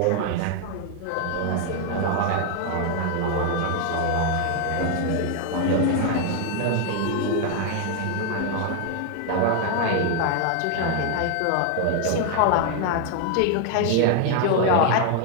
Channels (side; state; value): both; different; correlation 0.00